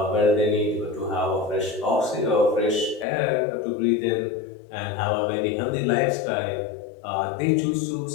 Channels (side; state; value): right; drops out; at 3.1 s